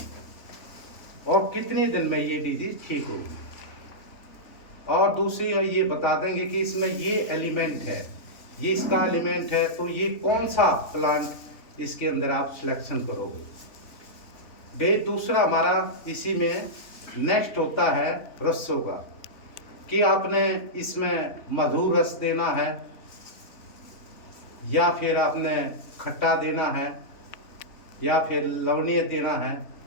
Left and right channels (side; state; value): right; late; 3.7 ms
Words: और कितने दिन में ये डिजीज ठीक होगी। और दूसरी ये बता देंगे कि इसमें ये एलिमेंट है, ये इसका एलिमेंट है, तो ये कौन सा प्लांट इसके अंदर आप सिलेक्शन करोगे। दूसरा हमारा इसी में नेक्स्ट होता है रसों का, कि आपने इसमें मधुर रस देना है या फिर आपने खट्टा देना है या फिर लवणीय देना है